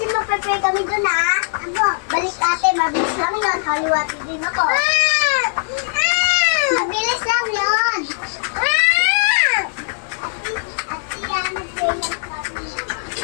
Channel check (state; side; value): silent; right; digital silence